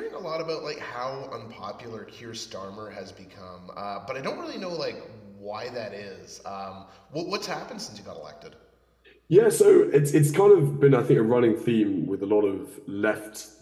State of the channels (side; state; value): both; identical; correlation 1.00